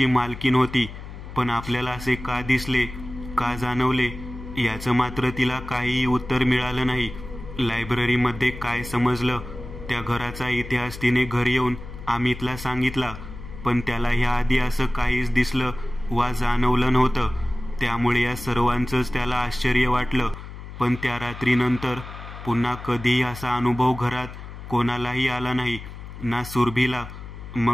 मालकीण होती. पण आपल्याला असे का दिसले, का जाणवले याचं मात्र तिला काहीही उत्तर मिळालं नाही. लायब्ररीमध्ये काय समजलं त्या घराचा इतिहास तिने घरी येऊन अमितला सांगितला, पण त्याला ह्याआधी असं काहीच दिसलं वा जाणवलं नव्हतं. त्यामुळे या सर्वांचंच त्याला आश्चर्य वाटलं. पण त्या रात्रीनंतर पुन्हा कधीही असा अनुभव घरात कोणालाही आला नाही, ना सुरभीला.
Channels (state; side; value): noise; left; hum, 12 dB below the sound